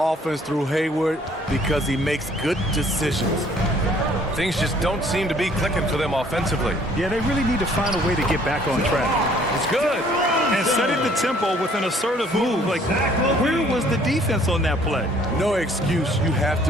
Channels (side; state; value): both; normal; correlation 0.59